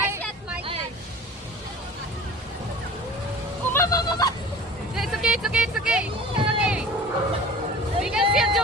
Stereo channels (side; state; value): both; normal; correlation 0.41